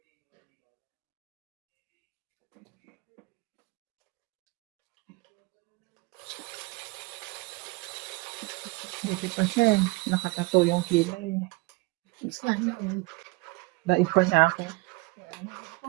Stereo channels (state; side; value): quieter; left; 24.0 dB